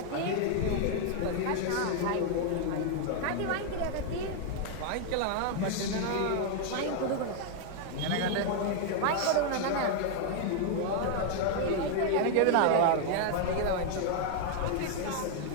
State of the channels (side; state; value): both; different; correlation 0.00